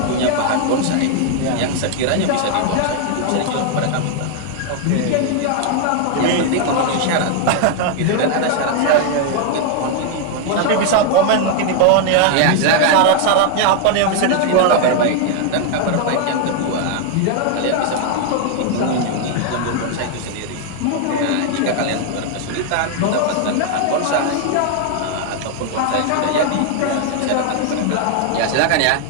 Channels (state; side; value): different; both; correlation 0.00